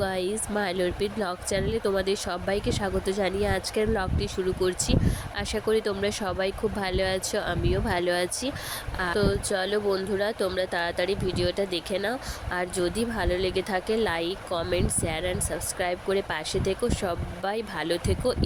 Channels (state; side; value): identical; both; correlation 1.00